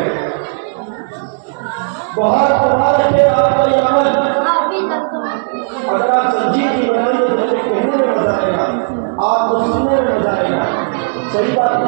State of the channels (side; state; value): left; silent; digital silence